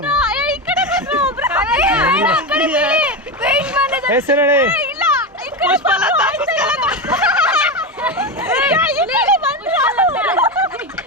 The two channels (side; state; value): both; normal; correlation 0.16